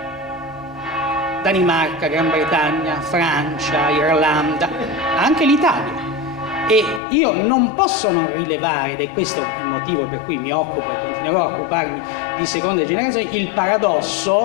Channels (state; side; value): drops out; right; at 7.0 s